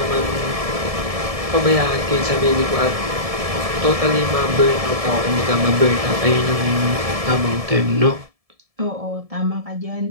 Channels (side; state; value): left; late; 1.7 ms